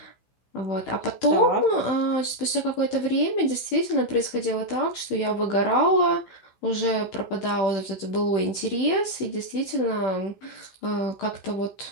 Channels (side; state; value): right; late; 16 ms